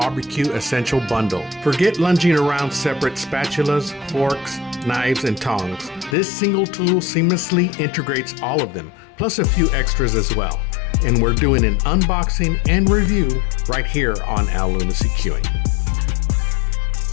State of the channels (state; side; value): drops out; right; at 6.2 s